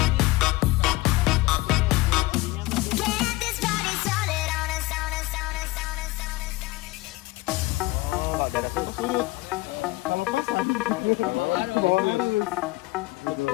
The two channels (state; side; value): quieter; right; 20.7 dB